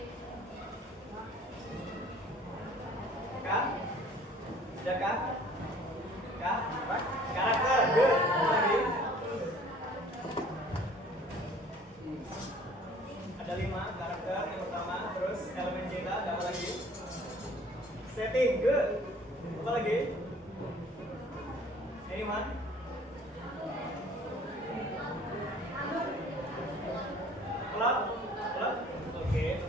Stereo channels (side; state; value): both; normal; correlation 0.52